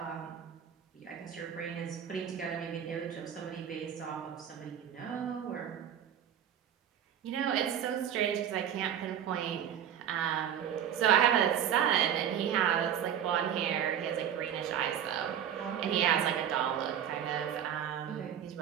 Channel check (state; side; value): quieter; left; 9.4 dB